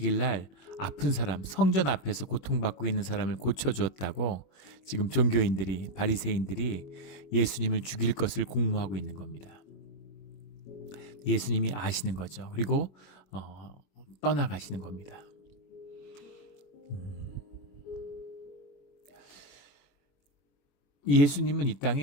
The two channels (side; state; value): right; late; 21 ms